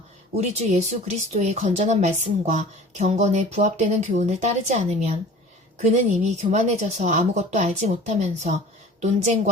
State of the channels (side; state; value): both; normal; correlation 0.43